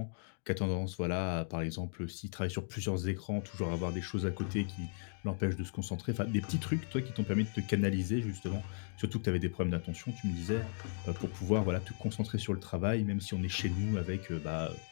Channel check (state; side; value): silent; right; digital silence